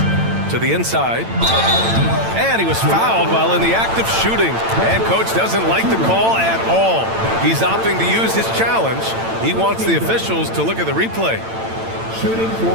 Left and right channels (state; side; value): late; left; 8.9 ms